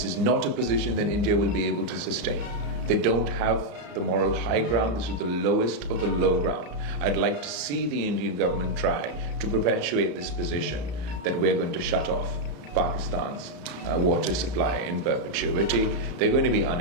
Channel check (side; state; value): left; late; 34 ms